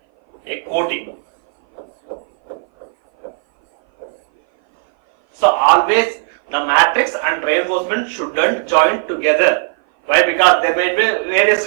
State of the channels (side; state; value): left; silent; 59 dB below the other